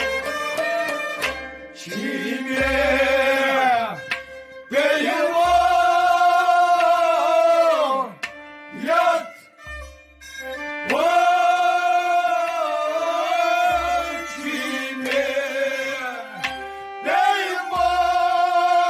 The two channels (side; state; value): both; identical; correlation 1.00